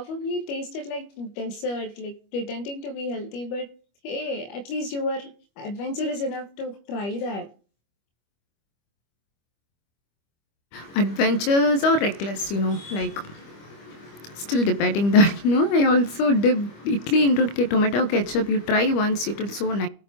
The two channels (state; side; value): late; right; 25 ms